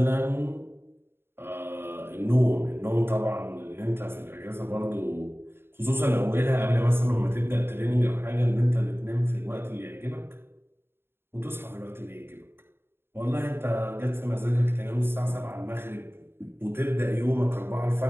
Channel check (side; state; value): left; late; 0.11 ms